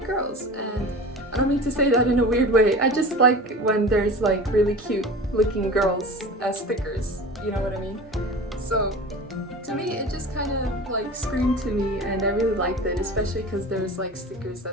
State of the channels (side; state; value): both; normal; correlation 0.35